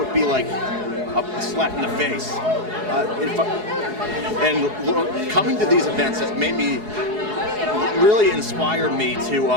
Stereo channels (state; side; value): late; left; 4.7 ms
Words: be like a slap in the face. Coming to these events has made me really inspired me to